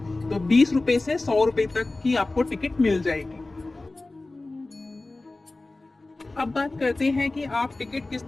तो 20 रुपए से 100 रुपए तक की आपको टिकट मिल जाएगी। अब बात करते हैं कि आप टिकट किस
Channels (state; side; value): quieter; right; 3.1 dB